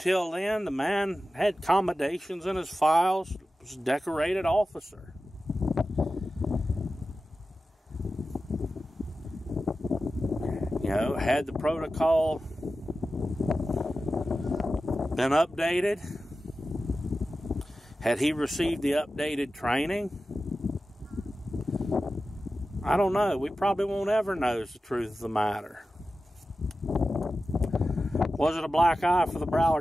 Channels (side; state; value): both; normal; correlation 0.94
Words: then, the man had commendations in his files, was a decorated officer. You know, had the protocol been updated? Had he received the updated training? I don't know. We probably won't ever know the truth of the matter. Was it a black eye for the